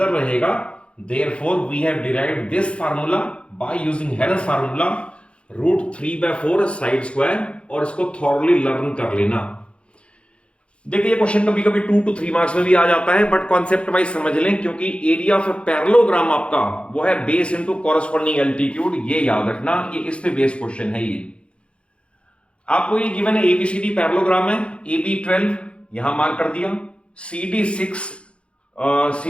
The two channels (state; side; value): late; right; 0.059 ms